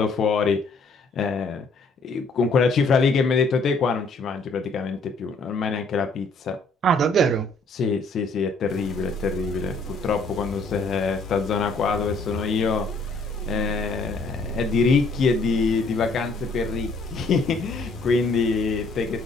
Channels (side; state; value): right; quieter; 3.2 dB